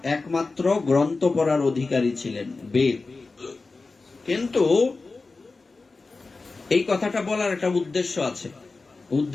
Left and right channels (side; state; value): right; quieter; 3.8 dB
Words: একমাত্র গ্রন্থ পড়ার অধিকারী ছিলেন, বেদ। কিন্তু এই কথাটা বলার একটা উদ্দেশ্য আছে।